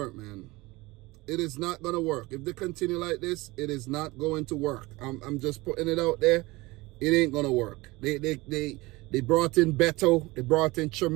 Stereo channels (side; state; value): left; quieter; 21.7 dB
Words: man. It is not going to work. If they continue like this, it is not going to work. I'm just putting it out there. It ain't going to work. They brought in Beto. They brought in